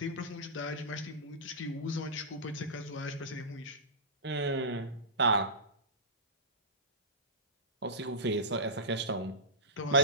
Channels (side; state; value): both; normal; correlation -0.18